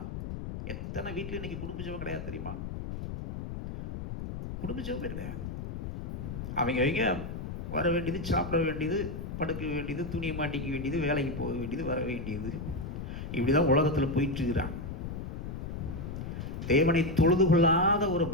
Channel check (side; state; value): left; noise; rumble, 7 dB below the sound